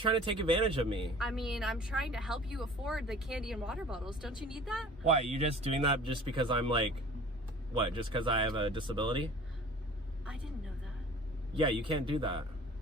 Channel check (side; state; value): both; normal; correlation 0.46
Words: to take advantage of me? I mean, I'm trying to help you afford the candy and water bottles. Don't you need that? Why? You just doing that just because I'm like, what? Just because I have a disability? I didn't know that. Yeah, you can't do that.